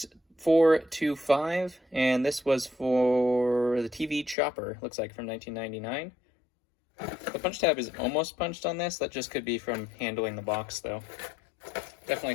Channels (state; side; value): drops out; right; at 4.4 s